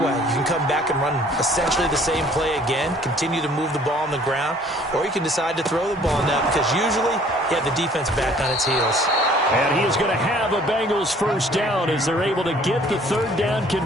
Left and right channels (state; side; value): normal; both; correlation 0.56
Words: You can come back and run essentially the same play again, continue to move the ball on the ground, or you can decide to throw the ball now because usually you have the defense back on its heels. And he is going to have a Bengals 1st down as they're able to get the 3rd down